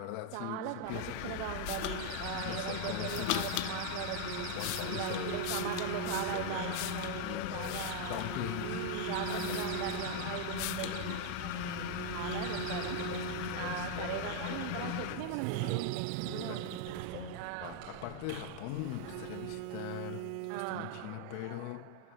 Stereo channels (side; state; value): both; different; correlation 0.00